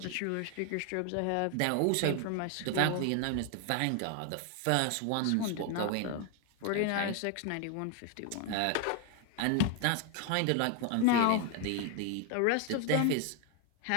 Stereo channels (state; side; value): different; both; correlation 0.01